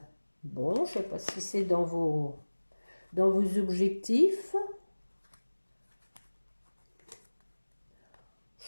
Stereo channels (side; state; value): both; inverted; correlation -1.00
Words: Bon, je ne sais pas si c'est dans vos objectifs.